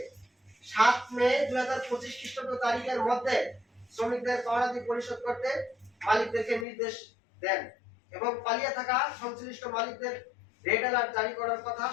7 মে 2025 খ্রিস্টাব্দ তারিখের মধ্যে শ্রমিকদের পাওনাদি পরিশোধ করতে মালিকদেরকে নির্দেশ দেন এবং পালিয়ে থাকা সংশ্লিষ্ট মালিকদের রেড অ্যালার্ট জারি করার কথা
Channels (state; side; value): drops out; right; at 6.7 s